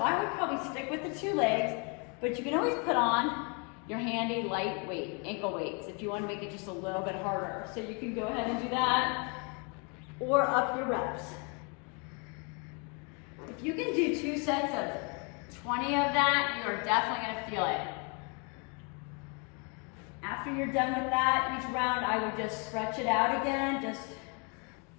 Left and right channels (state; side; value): quieter; right; 34.9 dB